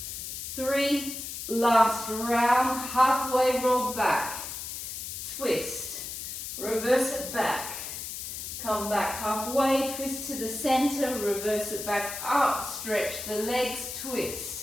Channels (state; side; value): noise; left; hiss, 7 dB below the sound